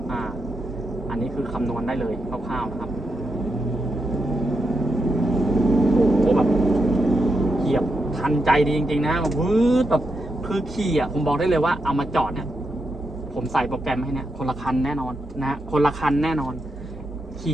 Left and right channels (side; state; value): both; normal; correlation 0.84